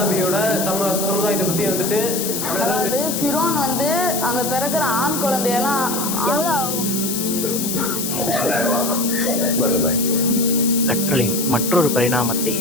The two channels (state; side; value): noise; left; hiss, 3 dB below the sound